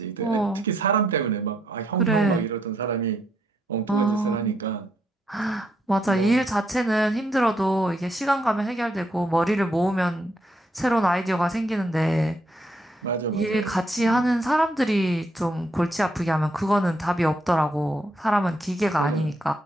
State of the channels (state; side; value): normal; both; correlation 0.76